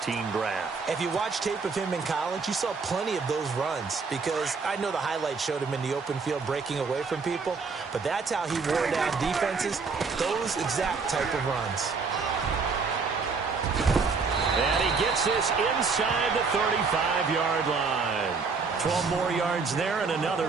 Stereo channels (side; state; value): left; quieter; 4.8 dB